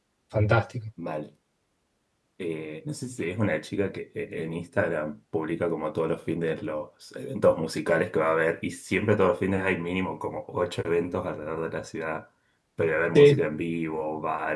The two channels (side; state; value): both; identical; correlation 1.00